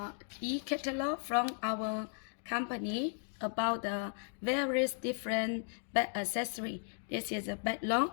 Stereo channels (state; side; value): silent; right; 54 dB below the other